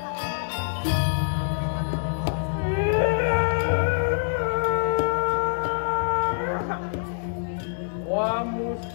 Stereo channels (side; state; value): right; silent; 61 dB below the other